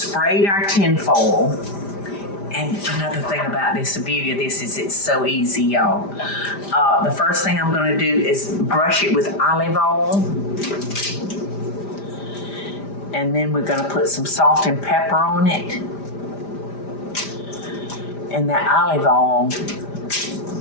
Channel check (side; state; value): right; late; 5.0 ms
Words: our tinfoil. And another thing about this, the beauty of this is it's so easy, y'all. The first thing I'm going to do is brush it with olive oil. And then we're going to put some salt and pepper on it. And that olive oil,